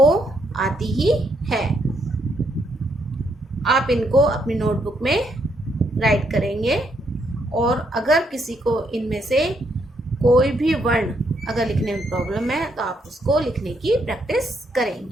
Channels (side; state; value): both; normal; correlation 0.75